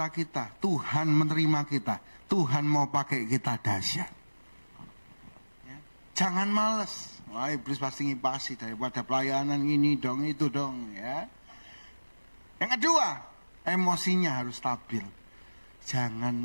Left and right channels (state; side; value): inverted; both; correlation -1.00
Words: kita, Tuhan menerima kita, Tuhan mau pakai kita dahsyat. Ya. Jangan males. Wah, iblis pasti ngipasi daripada pelayanan ini dong, itu dong, ya. Yang kedua, emosinya harus stabil. Jangan